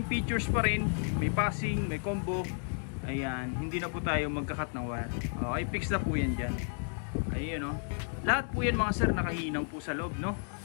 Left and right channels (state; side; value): silent; right; 56 dB below the other